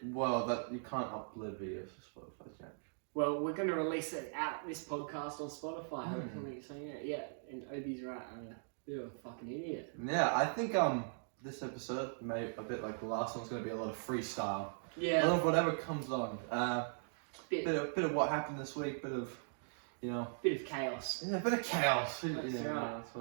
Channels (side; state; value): left; silent; digital silence